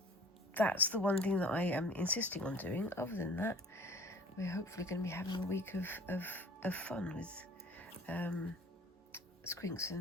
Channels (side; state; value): both; normal; correlation 0.48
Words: that's the one thing that I am insisting on doing. Other than that, we're hopefully going to be having a week of fun with Squinks